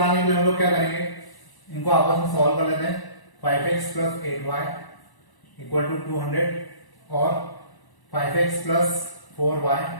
के लिए हम लोग क्या करेंगे, इनको आपस में सॉल्व कर लेते हैं। 5x plus 8y equal to 200 और 5x plus 4y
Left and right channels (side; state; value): right; late; 1.0 ms